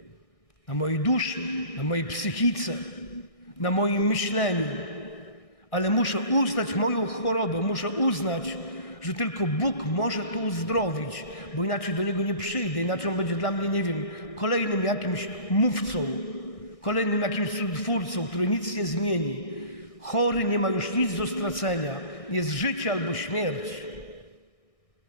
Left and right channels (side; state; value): right; late; 1.6 ms